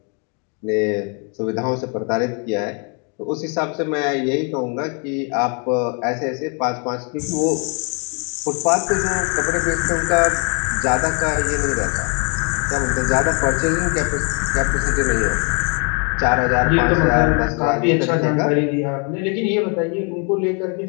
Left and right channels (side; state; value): right; quieter; 36.9 dB